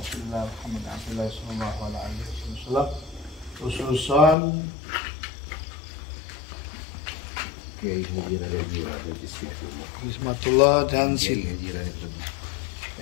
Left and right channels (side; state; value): right; drops out; at 4.4 s